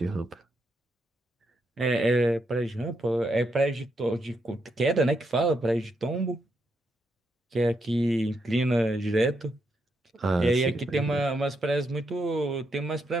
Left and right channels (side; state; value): both; normal; correlation 0.80